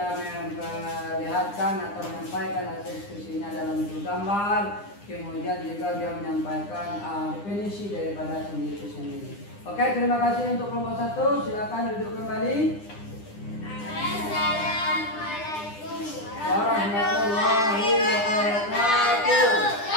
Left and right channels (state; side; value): late; right; 9.9 ms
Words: memperlihatkan atau menyampaikan hasil diskusinya dalam bentuk gambar. Kemudian juga dia menyampaikan definisi daripada sendi itu sendiri. Oke, terima kasih untuk kelompok 1. Silakan duduk kembali. Assalamualaikum warahmatullahi wabarakatuh.